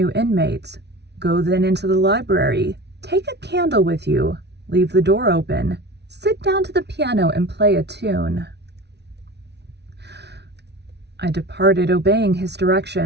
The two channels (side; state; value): left; late; 0.50 ms